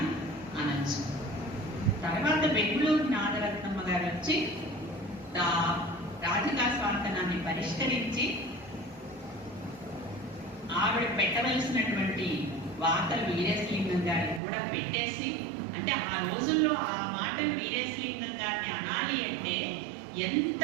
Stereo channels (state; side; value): drops out; left; at 14.4 s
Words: అనొచ్చు. తర్వాత బెంగుళూరు నాగరత్నమ్మ గారు వచ్చి రాధికా స్వాంతనాన్ని పరిష్కరించి ఆవిడ పెట్టవలసినటువంటి వార్తలు వీరేశలింగం గారిని కూడా పెట్టేసి, అంటే ఆ రోజుల్లో ఆ మాటలు వీరేశలింగం గారిని అనాలి అంటే ఎంత